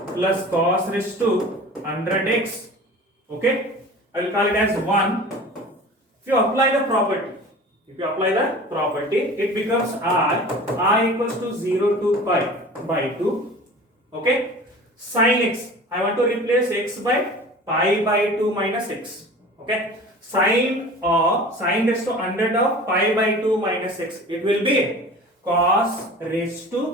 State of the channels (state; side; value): normal; both; correlation 0.40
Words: plus cos raised to 100x. Okay. I will call it as 1. If you apply the property, it becomes I equals to 0 to pi by 2. Okay. Sin x, I want to replace x by pi by 2 minus x. Okay. Sine raised to 100 of pi by 2 minus x. It will be cos raised